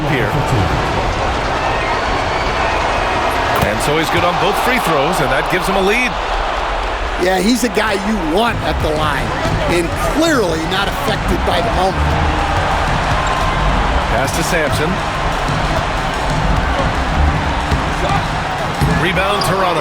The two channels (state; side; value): identical; both; correlation 1.00